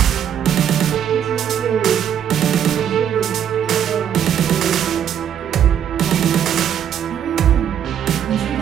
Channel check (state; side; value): quieter; left; 9.2 dB